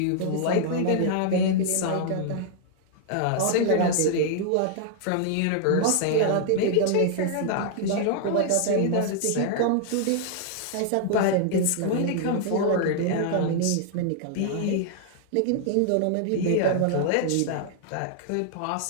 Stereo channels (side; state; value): both; different; correlation 0.00